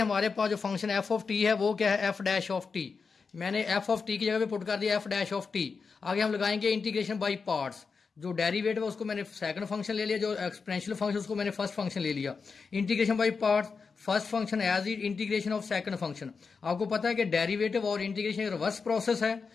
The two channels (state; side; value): quieter; right; 5.1 dB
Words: हमारे पास जो फंक्शन एफ ऑफ टी है वो क्या है, एफ डैश ऑफ टी। मैंने एफ ऑफ टी की जगह पे पुट कर दिया एफ डैश ऑफ टी। आगे हम लगाएंगे इंटीग्रेशन बाई पार्ट्स। जो डेरिवेटिव है उसको मैंने सेकंड फंक्शन ले लिया, जो एक्सपोनेंशियल फंक्शन उसको मैंने फर्स्ट फंक्शन ले लिया। Integration by parts, first function as it integration of second function. आपको पता है कि डेरिवेटिव और इंटीग्रेशन रिवर्स प्रोसेस है,